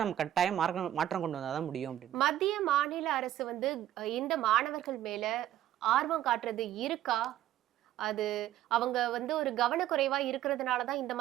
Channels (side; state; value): left; quieter; 12.6 dB